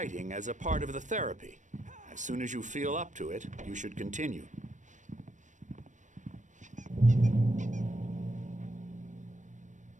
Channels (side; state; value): left; late; 0.36 ms